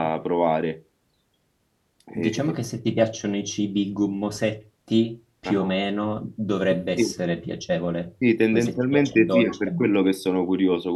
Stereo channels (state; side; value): identical; both; correlation 1.00